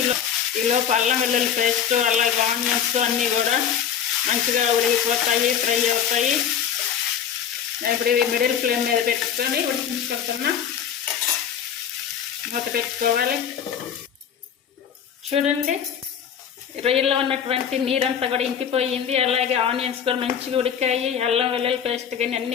ఈలోపు అల్లం వెల్లుల్లి పేస్ట్, అలాగే ఆనియన్స్ అన్నీ కూడా మంచిగా ఉడికిపోతాయి, ఫ్రై అవుతాయి. నేను ఇప్పుడు ఇవి మిడిల్ ఫ్లేమ్ మీద పెట్టుకొని ఉడికించుకుంటున్నా. మూత పెట్టుకోవాలి. చూడండి, రొయ్యల్లో ఉన్నటువంటి నీరంతా కూడా ఇంకిపోయింది. అలాగే ఆనియన్స్ కూడా మంచిగా ఉడికాయి. అల్లం వెల్లుల్లి పేస్ట్ కానీ అన్ని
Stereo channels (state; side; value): quieter; right; 8.3 dB